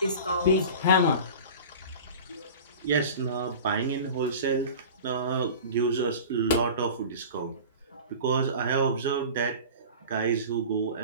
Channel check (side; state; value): both; inverted; correlation -0.36